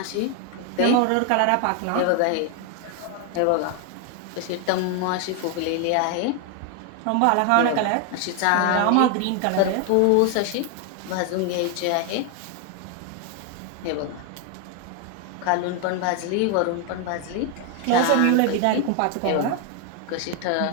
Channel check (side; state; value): both; different; correlation 0.01